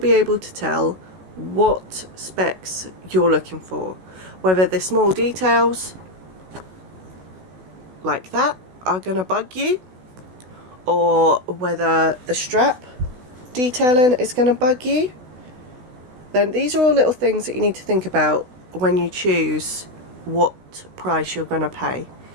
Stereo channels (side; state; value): left; late; 16 ms